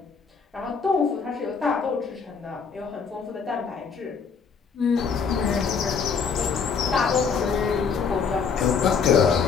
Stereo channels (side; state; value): right; quieter; 5.9 dB